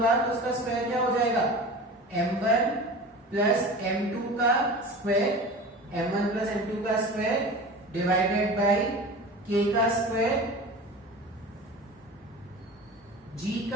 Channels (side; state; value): both; normal; correlation 0.35